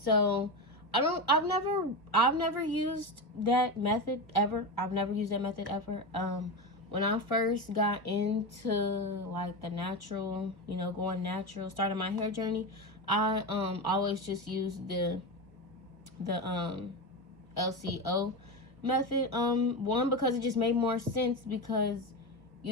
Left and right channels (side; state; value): left; late; 1.0 ms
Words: I've never used that method ever. I've never used that method ever. When I first got into like the natural, going natural, starting my hair journey, I always just used the LCO method. One, because it just made more sense, because